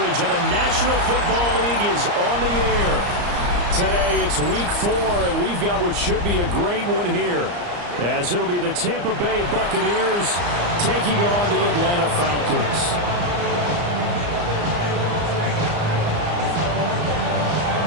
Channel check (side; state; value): left; late; 34 ms